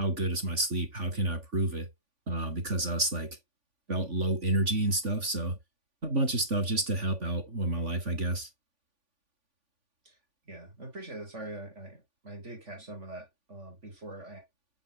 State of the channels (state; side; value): late; left; 3.5 ms